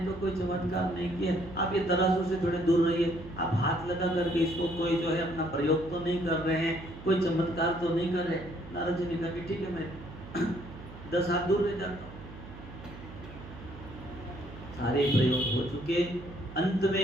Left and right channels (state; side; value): noise; right; hum, 15 dB below the sound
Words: तो कोई चमत्कार नहीं किया, आप ये तराजू से थोड़े दूर रहिए, आप हाथ लगा करके इसको कोई जो है अपना प्रयोग तो नहीं कर रहे हैं, कोई चमत्कार तो नहीं कर रहे। नारद जी ने कहा कि ठीक है मैं 10 हाथ दूर रह जाता हूँ। सारे प्रयोग हो चुके, अंत